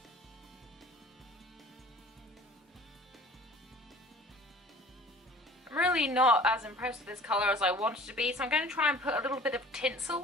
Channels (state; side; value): normal; both; correlation 0.47